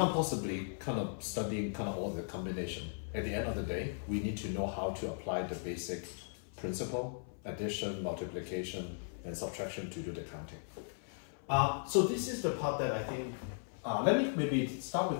possibly kind of study kind of all the combination. At the end of the day, we need to know how to apply the basic principle, addition, multiplication, and subtraction to do the counting. So this is the part that I think, let me maybe start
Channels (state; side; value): silent; right; 53 dB below the other